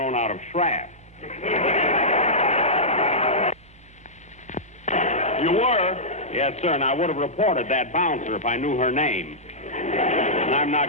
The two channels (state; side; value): normal; both; correlation -0.13